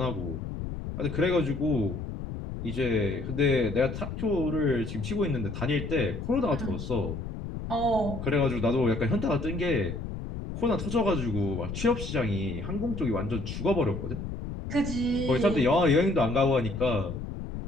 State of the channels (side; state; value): left; noise; rumble, 7 dB below the sound